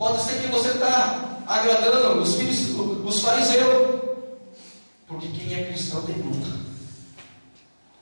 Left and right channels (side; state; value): both; inverted; correlation -1.00